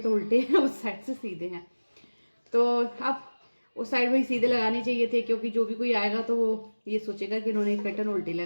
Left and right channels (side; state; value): both; inverted; correlation -1.00